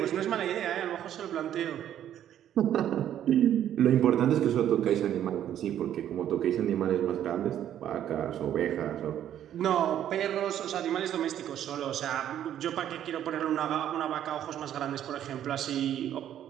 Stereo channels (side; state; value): left; quieter; 10.8 dB